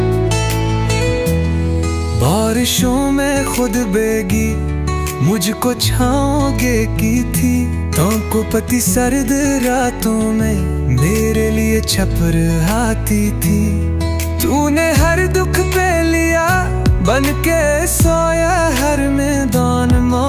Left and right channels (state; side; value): identical; both; correlation 1.00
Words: बारिशों में खुद बेगी, मुझको छाओगे की थी। को पति सर्द रातों में मेरे लिए छपर आती थी। तूने हर दुख पे लिया, बन के सोया हर मैदान।